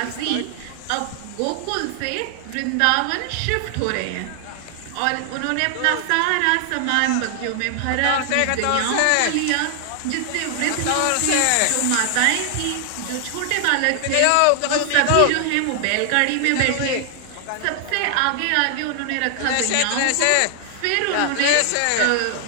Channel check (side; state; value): both; different; correlation 0.00